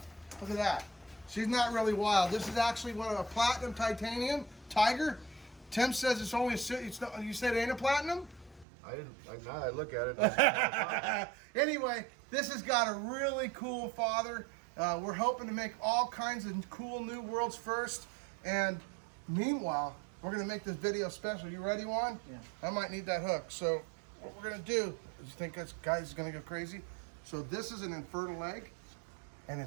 Look at that. She's not really wild. This is actually one of a platinum titanium tiger. Tim says it's only a. You said it ain't a platinum? I didn't. Now I look at it. Anyway, this has got a really cool father. We're hoping to make all kinds of cool new worlds first. And meanwhile, we're going to make this video special. You ready, Juan? Yeah. I might need that hook. So what we're going to do, you think this guy's going to go crazy? So this is an infertile egg, and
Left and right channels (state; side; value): drops out; left; at 8.7 s